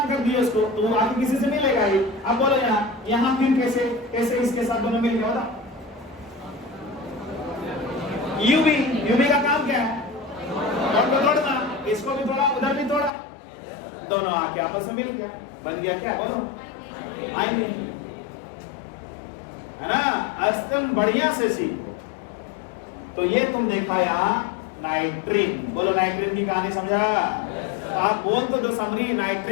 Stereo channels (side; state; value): right; drops out; at 13.1 s